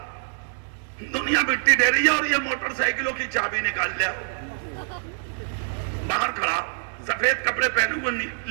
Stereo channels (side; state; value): left; silent; digital silence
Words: دنیا مٹی دے رہی ہے اور یہ موٹر سائیکلوں کی چابی نکال لیا. باہر کھڑا، سفید کپڑے پہنے ہوئے